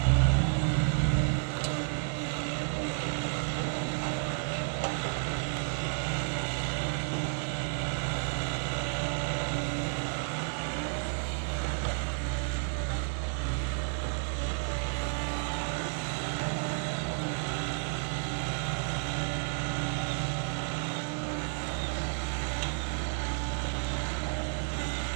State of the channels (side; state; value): left; silent; 57 dB below the other